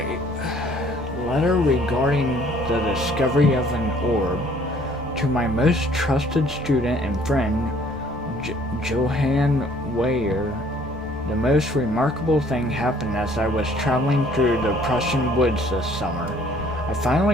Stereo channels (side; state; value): both; normal; correlation 0.58